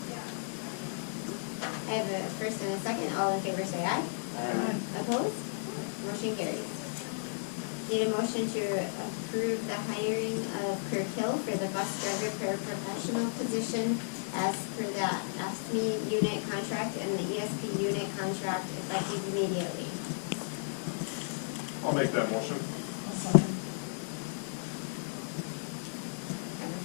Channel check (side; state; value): right; silent; digital silence